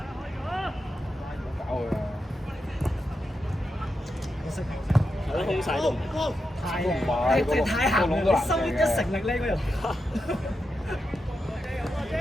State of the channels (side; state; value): both; normal; correlation 0.87